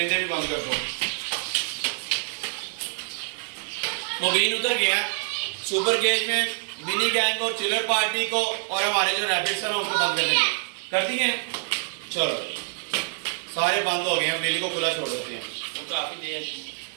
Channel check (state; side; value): silent; left; digital silence